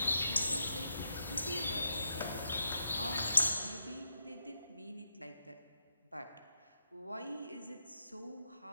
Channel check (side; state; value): both; inverted; correlation -0.83